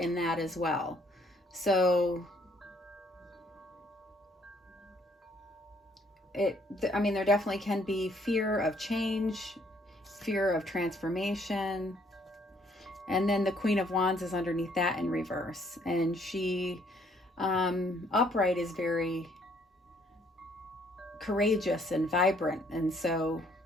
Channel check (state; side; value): normal; both; correlation 0.65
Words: that as well. So there definitely can be fear of change, fear of transformation. And then the Queen of Wands is underneath that in reverse. And she, upright, is very courageous and vibrant. And so